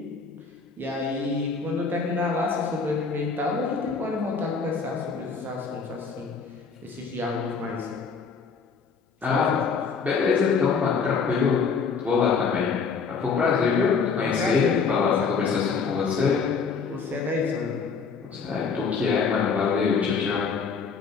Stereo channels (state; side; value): quieter; right; 5.4 dB